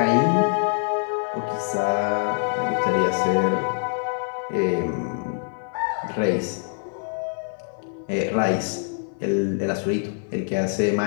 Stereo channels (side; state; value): right; silent; digital silence